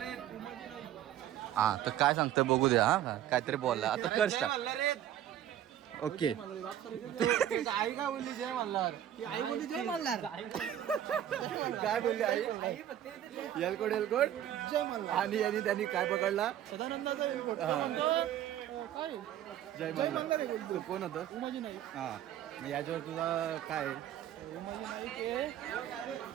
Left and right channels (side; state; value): left; quieter; 11.4 dB